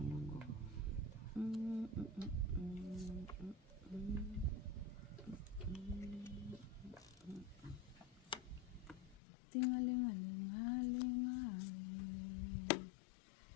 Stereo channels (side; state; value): right; drops out; at 9.2 s